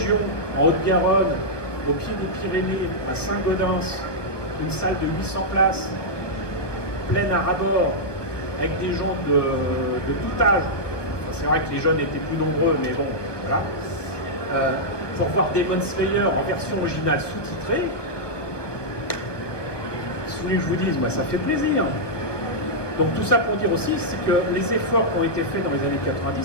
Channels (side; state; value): right; late; 1.1 ms